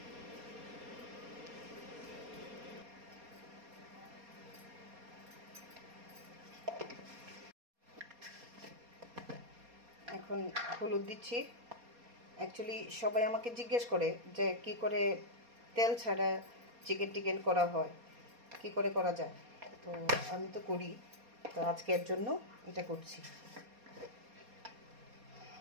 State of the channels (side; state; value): left; late; 4.2 ms